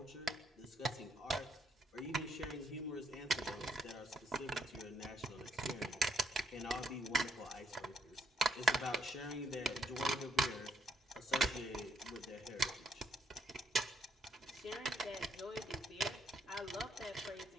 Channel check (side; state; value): both; normal; correlation 0.73